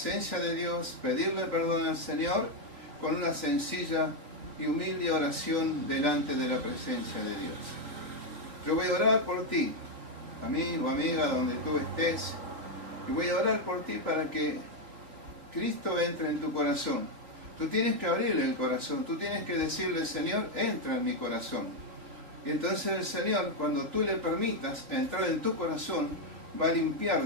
de Dios, pedirle perdón al Señor con una sencilla y humilde oración delante de la presencia de Dios. Yo voy a orar por ti, amigo, amiga, donde tú estés, y voy a orar por ti para que Cristo entre en tu corazón. Tú tienes que abrirle el corazón, tú tienes que decirle, Señor, entra en mi corazón. Y entonces el Señor, cuando tú le permitas entrar en tu corazón, va a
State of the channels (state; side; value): late; left; 4.1 ms